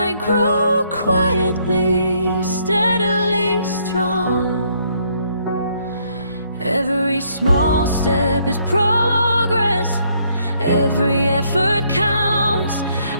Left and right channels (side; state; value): both; inverted; correlation -0.69